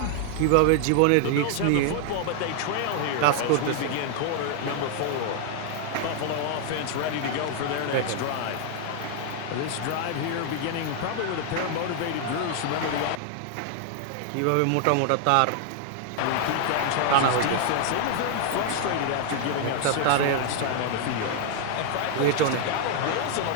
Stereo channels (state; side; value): different; both; correlation 0.00